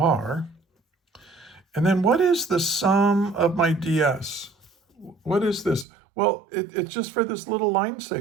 And then what is the sum of my ds? What is this? Well, it's just for this little line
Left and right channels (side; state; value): left; drops out; at 5.9 s